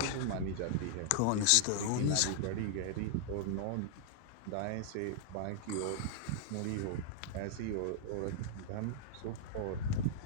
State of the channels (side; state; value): both; different; correlation -0.01